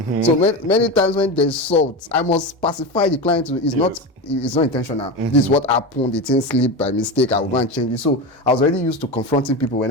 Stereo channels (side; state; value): both; normal; correlation 0.21